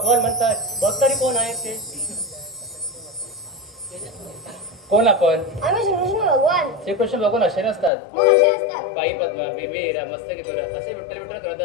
म्हणतात. बघ तरी कोण आहेत ते. कोण आपण? आम्ही श्रीकृष्ण भगवान. श्रीकृष्ण भगवान असे नसतात. मग असे असतात. बाई पद्मा, बेबी हिरा, मस्तकी दोरा असे विठ्ठल विठ्ठल करत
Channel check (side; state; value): right; drops out; at 7.9 s